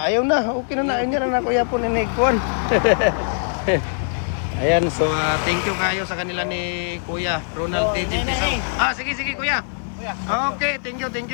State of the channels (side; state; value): right; silent; 64 dB below the other